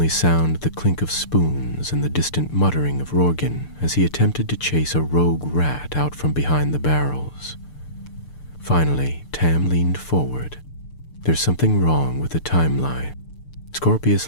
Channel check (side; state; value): right; late; 6.8 ms